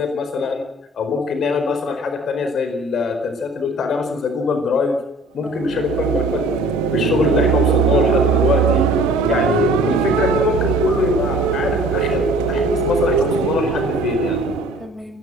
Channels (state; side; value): normal; both; correlation 0.50